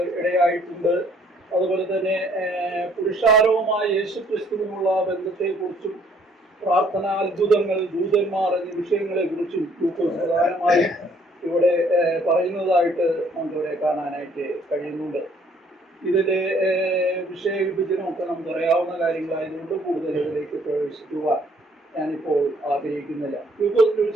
ഇടയായിട്ടുണ്ട്. അതുപോലെ തന്നെ പുരുഷാരവുമായ യേശുക്രിസ്തുവിനുള്ള ബന്ധത്തെക്കുറിച്ചും പ്രാർത്ഥനാ അത്ഭുതങ്ങൾ, ദൂതന്മാർ എന്നീ വിഷയങ്ങളെക്കുറിച്ചും ലൂക്കോസ് പ്രധാനമായും ഇവിടെ പറയുന്നതായിട്ട് നമുക്കിവിടെ കാണാനായിട്ട് കഴിയുന്നുണ്ട്. ഇതിൻ്റെ വിഷയവിഭജനമൊക്കെ നമുക്കറിയാവുന്ന കാര്യങ്ങളായതുകൊണ്ട് കൂടുതൽ ഇതിലേക്ക് പ്രവേശിക്കുവാൻ ഞാനിപ്പോൾ ആഗ്രഹിക്കുന്നില്ല. ലൂക്കോസിന്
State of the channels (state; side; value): normal; both; correlation 0.62